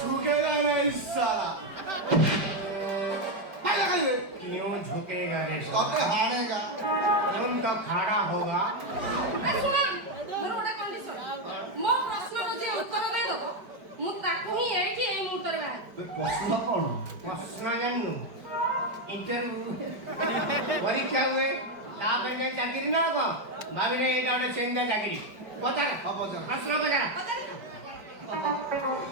झुकेगा नहीं साला क्यों झुकेगा रे कब हारेगा तुम तो खड़ा होगा ମୋର ଗୋଟେ କଣ୍ଡିସନ ମୋ ପ୍ରଶ୍ନର ଯେ ଉତ୍ତର ଦେଇଦବ ମୁଁ ତାକୁ ହିଁ ଏଇଠି ଏଇ ମୁହୂର୍ତ୍ତରେ ବାହାରିବି ପ୍ରଶ୍ନ କଣ प्रश्न जानू इंटरव्यू परीक्षा हुए तापर में चाकरी ना को भाभी ने एटा ଗୋଟେ ସେନ୍ତା ଚାକିରି ପଚାର ପଚାର। ପ୍ରଶ୍ନ ପଚାର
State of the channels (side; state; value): left; late; 4.9 ms